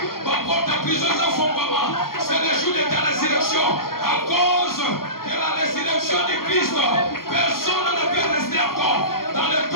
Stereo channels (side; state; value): right; late; 0.92 ms